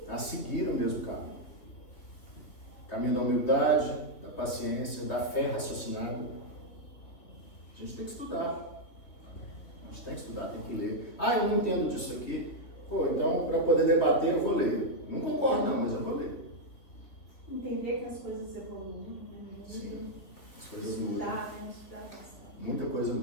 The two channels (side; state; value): right; late; 3.4 ms